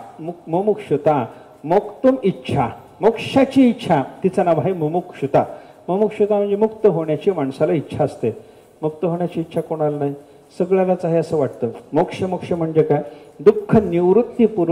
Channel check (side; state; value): both; identical; correlation 1.00